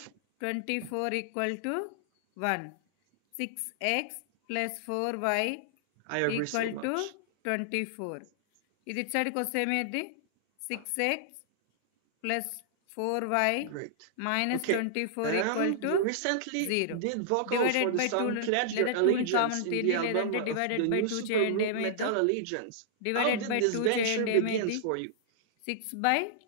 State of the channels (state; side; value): different; both; correlation -0.01